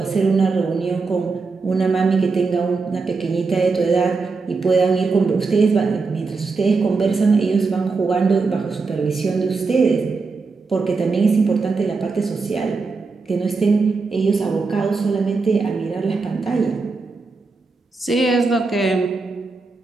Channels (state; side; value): quieter; left; 4.2 dB